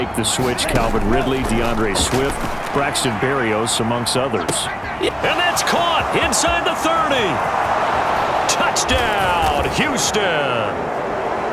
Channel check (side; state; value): both; identical; correlation 1.00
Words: the switch, Calvin Ridley, DeAndre Swift, Braxton Berrios, amongst others. And that's caught inside the 30. Touchdown, Houston.